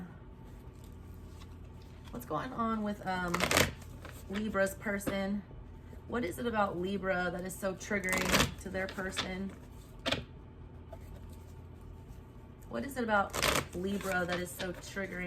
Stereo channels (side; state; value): both; identical; correlation 1.00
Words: What's going on with Libra's person? What is it about Libra that is so triggering to their person? What is it about Libra that is so